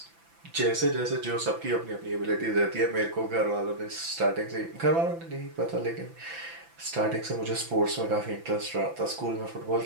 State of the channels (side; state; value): left; late; 6.0 ms